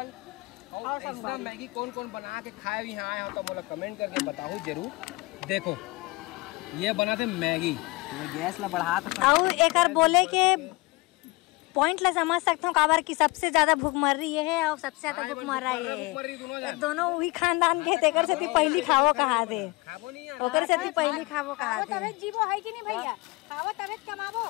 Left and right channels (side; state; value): right; quieter; 24.5 dB